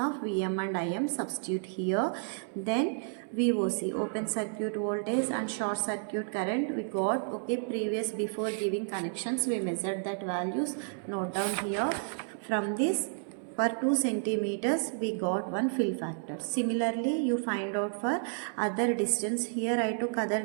Vm and Im. Substitute here. Then VOC, open circuit voltage and short circuit current we got. Okay, before giving connections we measured that values. Note down here. From this, for 2 centimeters we got one fill factor. Similarly, you find out for other distance. Here I took other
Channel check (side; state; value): left; silent; 57 dB below the other